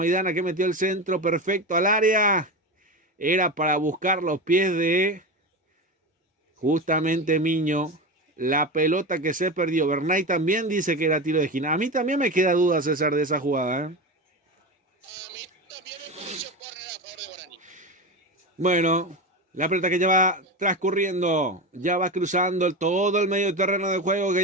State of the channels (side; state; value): both; normal; correlation 0.21